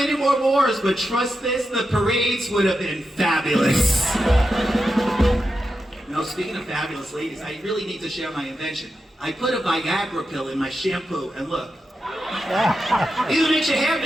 more wars, but trust this, the parades would have been fabulous. Now, speaking of fabulous ladies, I really need to share my invention. I put a Viagra pill in my shampoo, and look. Either makes your hair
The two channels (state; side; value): normal; both; correlation 0.88